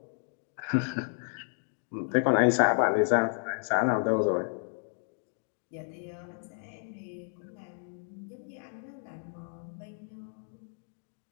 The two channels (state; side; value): silent; right; 57 dB below the other